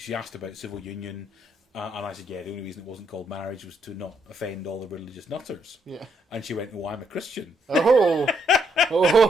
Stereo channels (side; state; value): both; normal; correlation 0.74